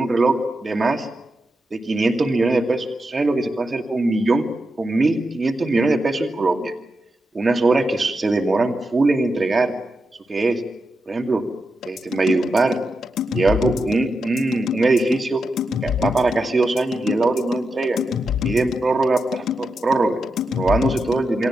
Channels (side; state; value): both; normal; correlation 0.87